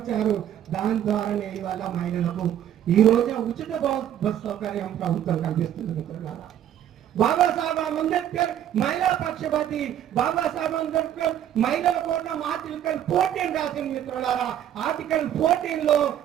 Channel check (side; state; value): left; quieter; 10.8 dB